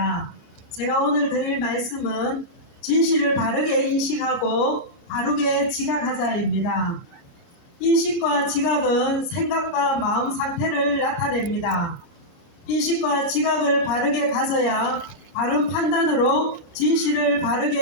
제가 오늘 드릴 말씀은 진실을 바르게 인식하고 바르게 지각하자입니다. 인식과 지각은 생각과 마음 상태를 나타냅니다. 인식과 지각을 바르게 가져야 바른 판단으로 진실을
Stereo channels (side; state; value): right; late; 29 ms